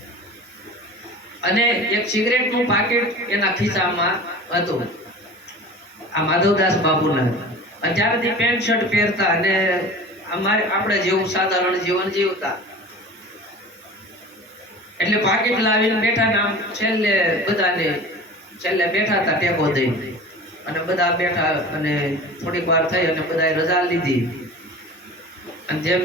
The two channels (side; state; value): both; normal; correlation 0.38